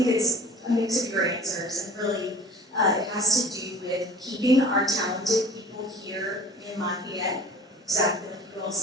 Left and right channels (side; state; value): both; normal; correlation 0.45